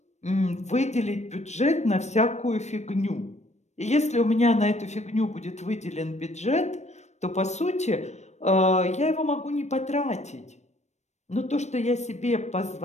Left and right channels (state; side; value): late; right; 0.33 ms